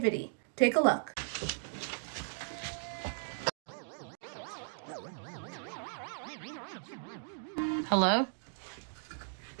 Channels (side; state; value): left; silent; digital silence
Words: Take a look. Hello?